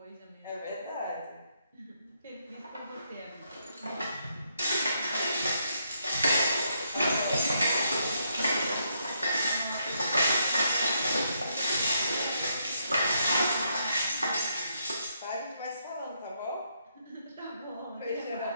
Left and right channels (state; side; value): inverted; both; correlation -0.76